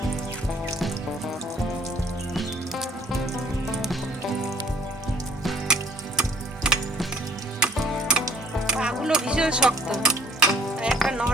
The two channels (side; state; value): both; normal; correlation 0.56